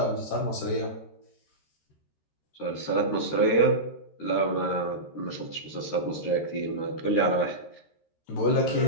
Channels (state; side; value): late; right; 13 ms